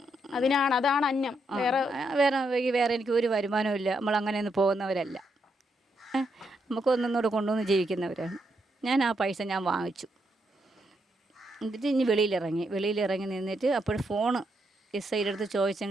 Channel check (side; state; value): both; normal; correlation 0.79